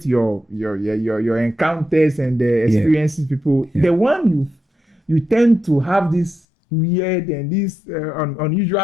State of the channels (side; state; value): right; drops out; at 6.4 s